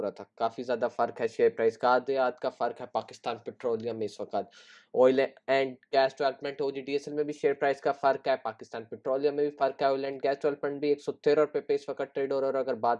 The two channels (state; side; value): identical; both; correlation 1.00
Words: रहा था। काफ़ी ज़्यादा फ़र्क है शेयर प्राइस का, आधे आध का फ़र्क है पाकिस्तान पेट्रोलियम में इस वक्त। Oil and gas development OGDSL में भी शेयर प्राइस का फ़र्क है, पाकिस्तान पेट्रोलियम में भी फ़र्क है। ऑयल एंड गैस डेवलपमेंट भी 113 रुपये पे इस वक्त ट्रेड हो रहा है। और अगर